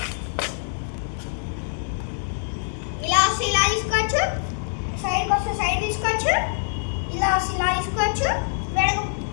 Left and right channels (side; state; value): right; silent; digital silence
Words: ఇలా తీసుకోవచ్చు, సైడ్కి వస్తే సైడ్ తీసుకోవచ్చు, ఇలా తీసుకోవచ్చు,